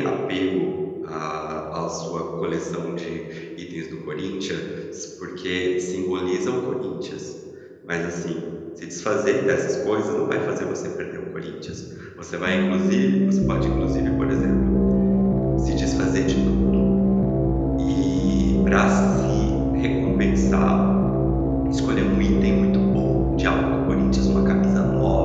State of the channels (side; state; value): both; identical; correlation 1.00